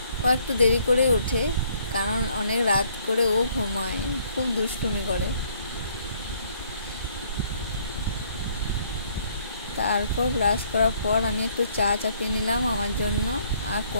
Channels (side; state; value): both; inverted; correlation -0.65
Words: ও একটু দেরি করে ওঠে, কারণ অনেক রাত করে ও ঘুমায়, খুব দুষ্টুমি করে। তারপর ব্রাশ করার পর আমি একটু চা চাপিয়ে নিলাম আমার জন্য। আর